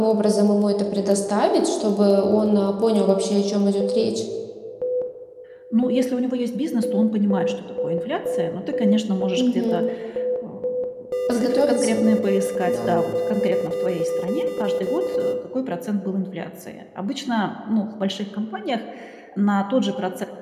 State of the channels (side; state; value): both; identical; correlation 1.00